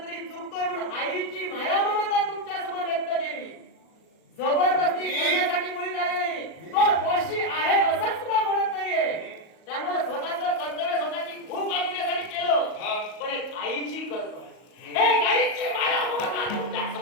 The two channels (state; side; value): late; right; 38 ms